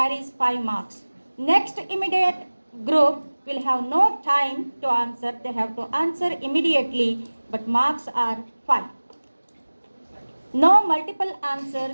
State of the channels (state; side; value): inverted; both; correlation -1.00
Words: 5 marks. Next immediate group will have no time to answer. They have to answer immediately, but marks are 5. No multiple